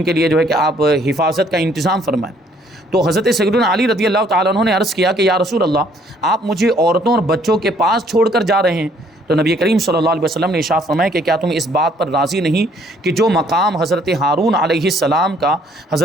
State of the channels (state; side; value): normal; both; correlation 0.63